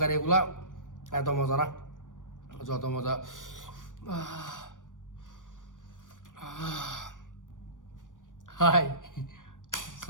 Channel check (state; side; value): late; right; 0.87 ms